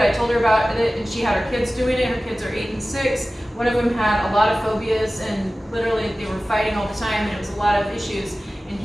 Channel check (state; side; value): normal; both; correlation 0.96